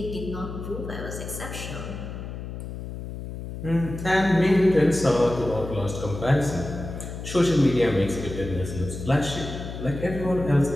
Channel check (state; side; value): noise; left; hum, 8 dB below the sound